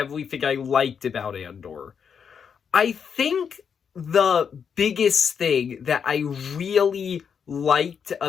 I liked about Andor. I think the biggest thing that I really liked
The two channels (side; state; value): right; quieter; 6.9 dB